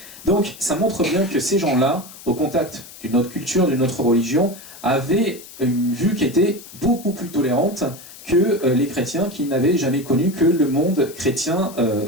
Donc ça montre bien que ces gens-là, au contact d'une autre culture, d'une autre religion, avaient une vue qui était beaucoup plus tolérante que les chrétiens qui n'avaient jamais connu que le monde chrétien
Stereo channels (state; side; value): noise; left; hiss, 17 dB below the sound